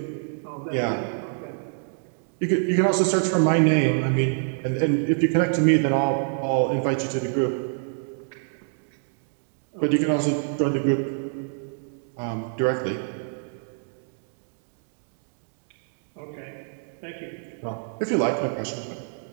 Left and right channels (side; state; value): left; silent; digital silence